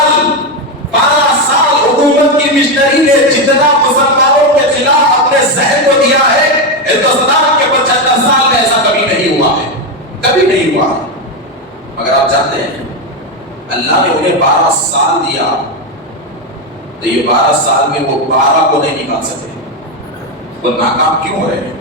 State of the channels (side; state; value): both; normal; correlation 0.09